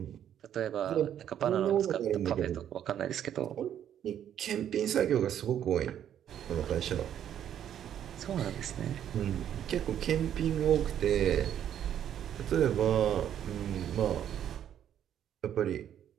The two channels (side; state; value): left; quieter; 10.1 dB